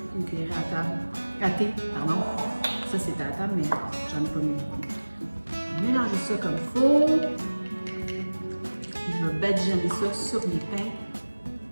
Une cuillère à thé, pardon. Ça, c'était à table, mais j'en ai pas mis ça comme il faut. Je vais badigeonner ça sur mes pains.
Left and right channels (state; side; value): inverted; both; correlation -1.00